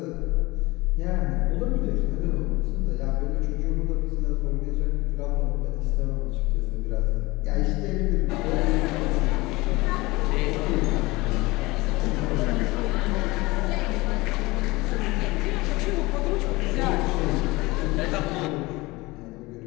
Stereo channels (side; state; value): right; quieter; 21.9 dB